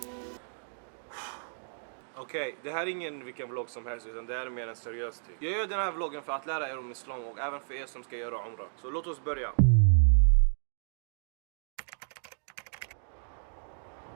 Okej, det här är ingen vilken vlogg som helst utan det här är mer en seriös typ. Jag gör den här vloggen för att lära er om islam och även för er som ska göra umrah. Så låt oss börja.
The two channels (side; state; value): left; silent; digital silence